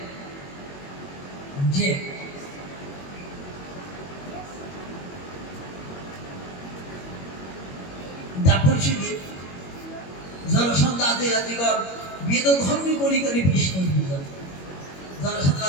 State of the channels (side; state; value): right; late; 22 ms